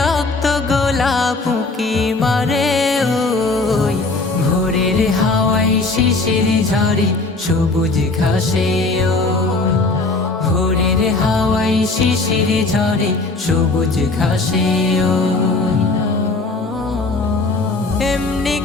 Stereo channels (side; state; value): right; quieter; 3.4 dB